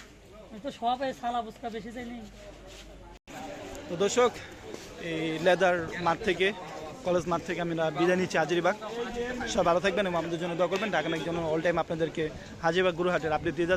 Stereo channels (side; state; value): both; identical; correlation 1.00